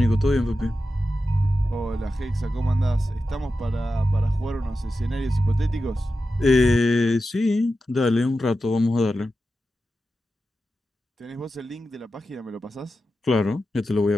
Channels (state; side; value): normal; both; correlation 0.91